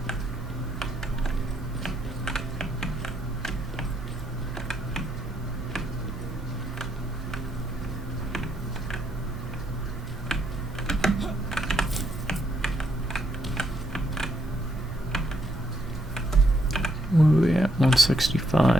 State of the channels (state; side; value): normal; both; correlation 0.75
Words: What are we at?